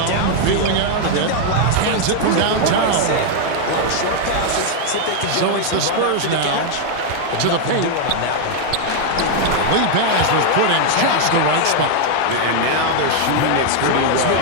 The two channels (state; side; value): different; both; correlation 0.00